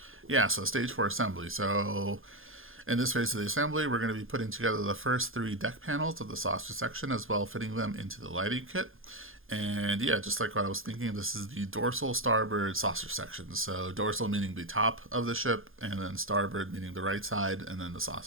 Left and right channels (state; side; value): late; left; 0.60 ms